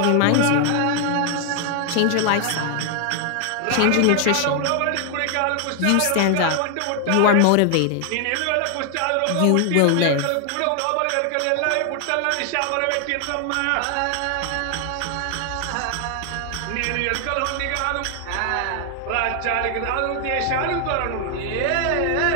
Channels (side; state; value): both; different; correlation 0.00